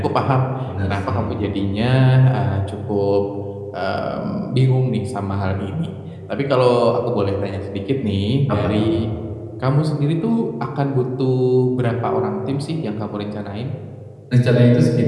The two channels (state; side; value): identical; both; correlation 1.00